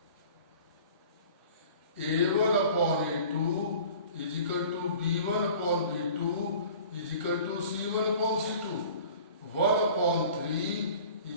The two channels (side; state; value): both; inverted; correlation -0.45